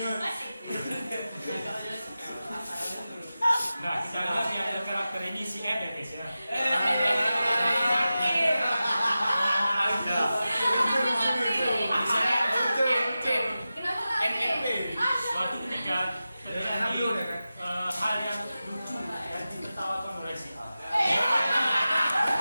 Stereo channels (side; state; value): both; inverted; correlation -0.94